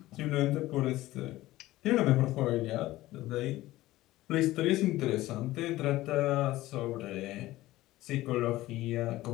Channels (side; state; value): right; quieter; 16.9 dB